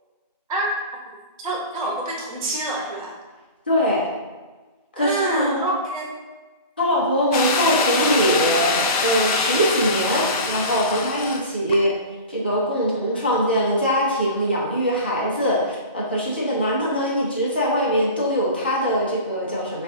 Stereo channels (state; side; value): inverted; both; correlation -0.33